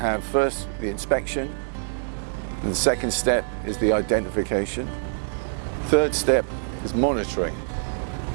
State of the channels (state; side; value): silent; left; digital silence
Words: first the inspection, and the second step is the identification. Third step is monitoring.